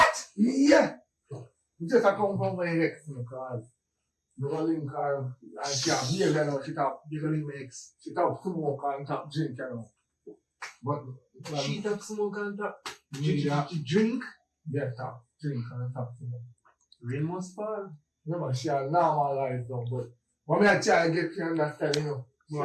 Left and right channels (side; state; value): both; identical; correlation 1.00